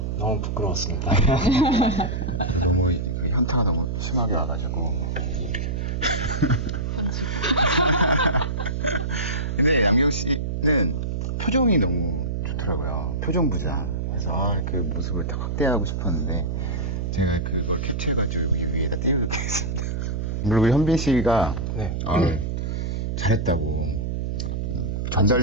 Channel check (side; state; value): right; noise; hum, 2 dB below the sound